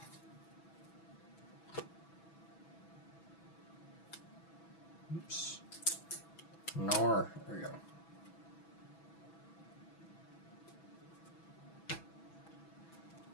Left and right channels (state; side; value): late; right; 6.1 ms